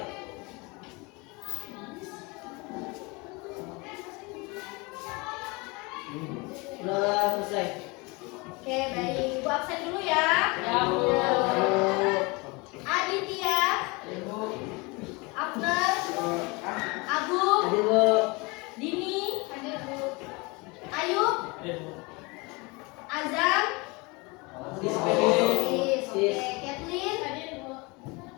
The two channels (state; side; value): quieter; right; 26.6 dB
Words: Udah selesai. Oke, baik. Ibu absen dulu ya. Ya, Bu. Aditya, Ibu. Abner, Abu, Hadir, Bu. Dini, Ayub, Azam, Sis, Oke, Kathleen,